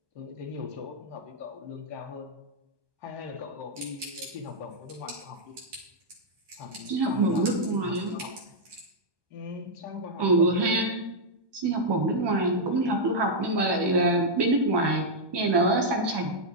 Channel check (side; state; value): left; late; 1.2 ms